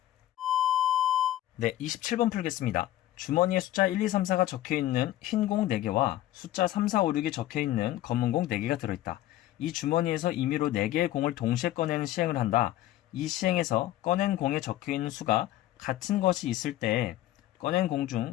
네, 27번 풀겠습니다. 주머니에 숫자 1, 2, 3, 4가 적혀있는 흰 공 4개와 숫자 3, 4, 5, 6이 적혀있는 검은 공 4개가 들어있다. 이 주머니에서 임의로 4개의 공을 동시에 꺼내는 시행을 한다. 이 시행에서 꺼낸 공에 적혀있는 수가 같은 것이 있을 때 꺼낸 공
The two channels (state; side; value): quieter; right; 14.1 dB